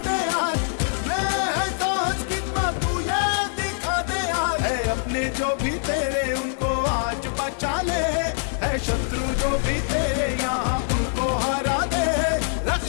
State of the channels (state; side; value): silent; right; 63 dB below the other